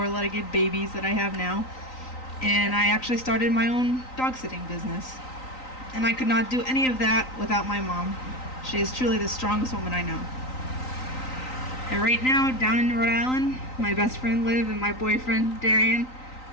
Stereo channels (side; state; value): right; late; 3.9 ms